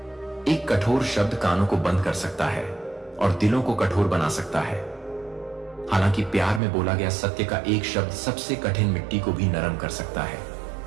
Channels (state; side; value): drops out; left; at 6.6 s